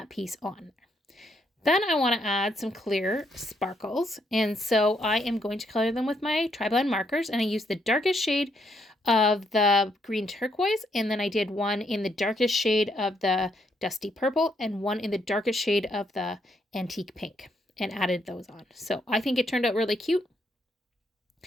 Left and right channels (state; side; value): normal; both; correlation 0.74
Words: piece on. Then I want to add some clear sparkles. And so I am going to color them with my tri-blend markers. And I used the darkest shade of the green turquoise. And then I did one in the darkest shade of the dusty purple and one in the darkest shade of the antique pink, and added those on. So I think it turned out really cute.